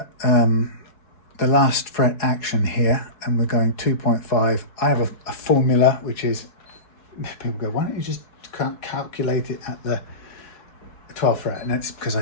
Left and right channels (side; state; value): right; late; 4.7 ms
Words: the last fret action here, and we're going 2.5, I have a formula which is, people go, why don't you just calculate it at the 12th fret? And it's because